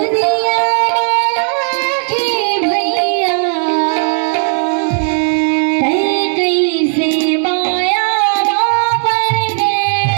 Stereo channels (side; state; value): left; silent; 62 dB below the other